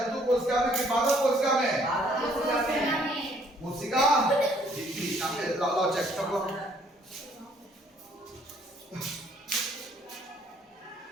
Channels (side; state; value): both; normal; correlation 0.63